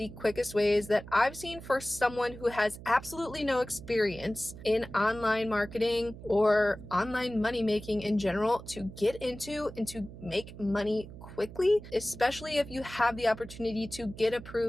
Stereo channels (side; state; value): right; noise; hum, 15 dB below the sound